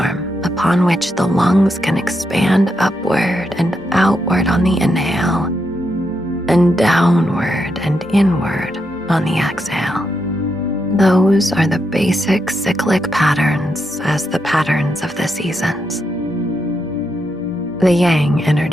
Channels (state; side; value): normal; both; correlation 0.82